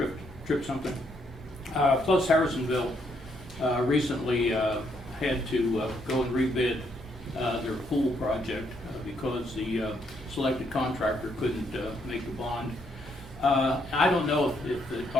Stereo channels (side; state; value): both; normal; correlation 0.73